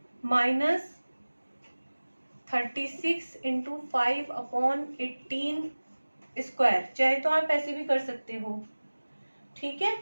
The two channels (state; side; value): inverted; both; correlation -1.00